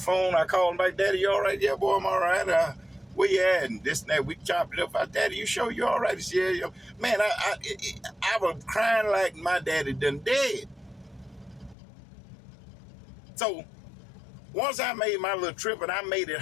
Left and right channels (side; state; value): right; drops out; at 11.8 s